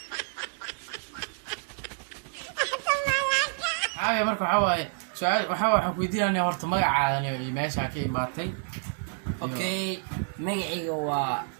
هاي marka waxa waaye su'aal waxa ku weydiinayna horta magacaada iyo meesha ka imaatay okay magacayga waa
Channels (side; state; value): left; silent; 59 dB below the other